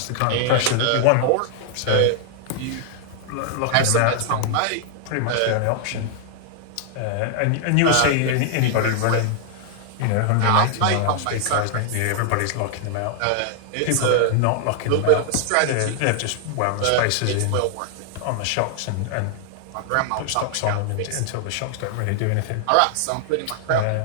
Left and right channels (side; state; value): both; different; correlation 0.00